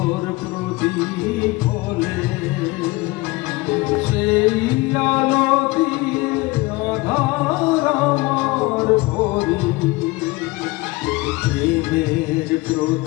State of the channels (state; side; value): quieter; right; 21.5 dB